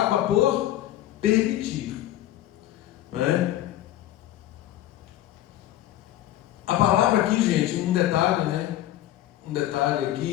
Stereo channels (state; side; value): quieter; right; 13.5 dB